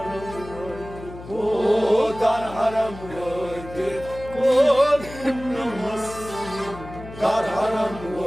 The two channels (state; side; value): noise; left; hum, 14 dB below the sound